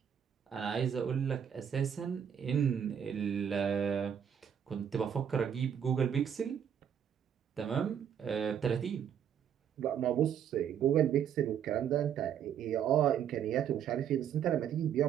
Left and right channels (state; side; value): quieter; left; 8.6 dB